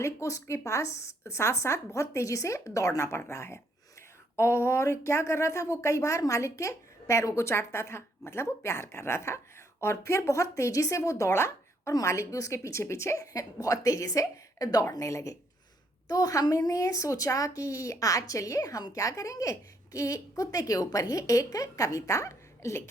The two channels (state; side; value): normal; both; correlation 0.71